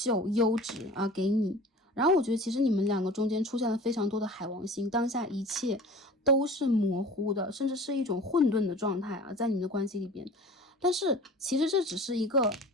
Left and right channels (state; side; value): normal; both; correlation 0.41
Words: 优质啊给你。然后我觉得其实你们两个中间出现了非常多的海王星，当下一切都是模糊的，甚至是一种混沌的状态啊，在你们的关系里边。但是其实这只是一个